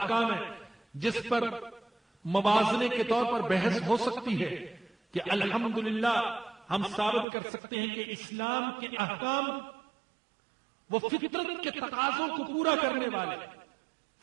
ہیں جس پر موازنے کے طور پر بحث ہو سکتی ہے کہ الحمدللہ ہم ثابت کر سکتے ہیں کہ اسلام کے احکام وہ فطرت کے تقاضوں کو پورا کرنے والے،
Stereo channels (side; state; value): left; drops out; at 7.2 s